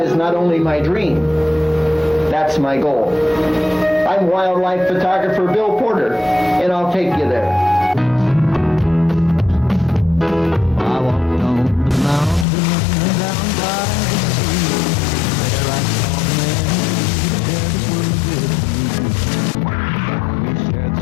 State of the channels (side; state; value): right; drops out; at 12.5 s